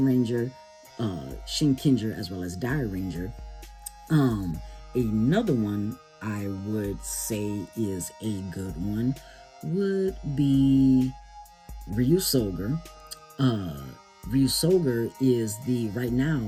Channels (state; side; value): identical; both; correlation 1.00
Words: Ranger, Shinkenger, as well as Dai Ranger. Another one I would say is a good one would be Ryu Soger. Ryu Soger is right